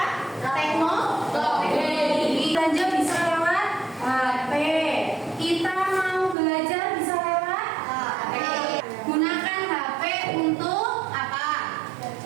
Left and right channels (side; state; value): left; drops out; at 6.4 s